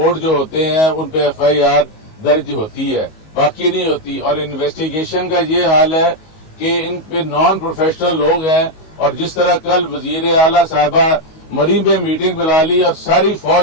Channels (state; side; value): late; right; 19 ms